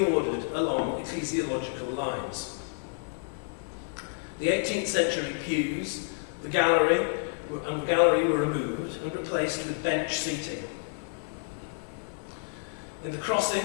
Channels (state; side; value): silent; right; 58 dB below the other